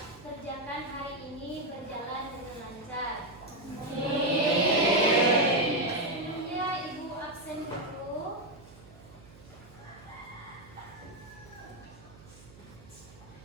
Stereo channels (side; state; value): right; noise; hum, 21 dB below the sound